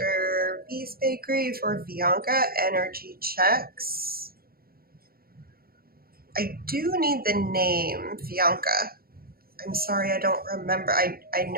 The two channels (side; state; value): left; late; 0.44 ms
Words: B's Bakery for Bianca, energy checks. I do need the name, Bianca. I'm sorry, I don't remember. I